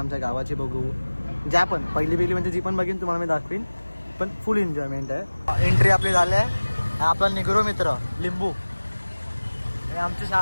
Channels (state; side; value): inverted; both; correlation -1.00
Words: गावाची बघू. ज्या पण पहिली म्हणजे जी पण बघीन तुम्हाला मी दाखवीन. पण फुल एन्जॉयमेंट आहे. एंट्री आपली झाली आहे. आपला निग्रो मित्र लिंबू. हे आमची